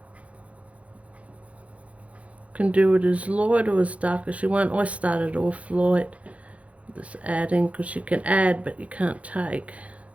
Can do it as light or as dark as you want. I started off light, just adding, because you can add but you can't take.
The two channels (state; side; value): late; left; 0.065 ms